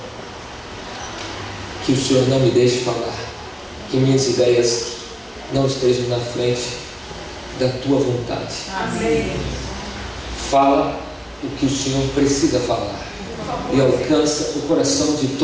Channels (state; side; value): identical; both; correlation 1.00